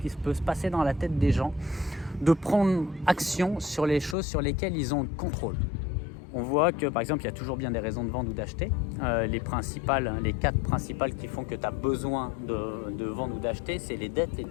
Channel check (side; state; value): right; drops out; at 4.2 s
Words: peut se passer dans la tête des gens, de prendre action sur les choses sur lesquelles ils ont le contrôle? On voit que par exemple il y a toujours bien des raisons de vendre ou d'acheter. Les 4 principales qui font que tu as besoin de vendre ou d'acheter, c'est les dettes, les